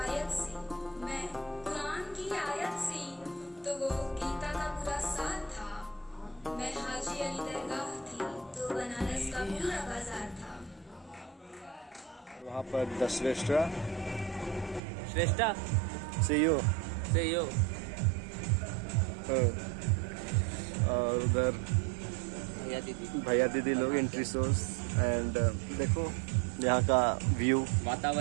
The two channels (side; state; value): left; drops out; at 14.8 s